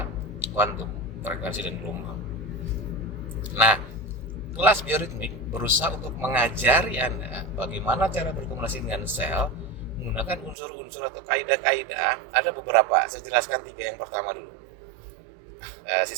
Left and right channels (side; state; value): left; drops out; at 10.6 s